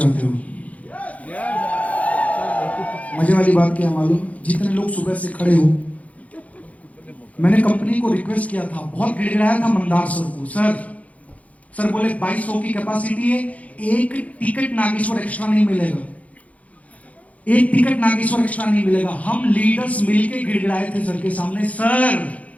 हो? मजे वाली बात क्या मालूम, जितने लोग सुबह से खड़े हो, मैंने कंपनी को रिक्वेस्ट किया था, बहुत गिड़गिड़ाया था मंदार सर को। सर बोले 2200 की कैपेसिटी है, एक टिकट नागेश्वर एक्स्ट्रा नहीं मिलेगा, एक टिकट नागेश्वर एक्स्ट्रा नहीं मिलेगा। हम लीडर्स मिलके गिड़गिड़ाए थे सर के सामने, सर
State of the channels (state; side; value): late; right; 0.068 ms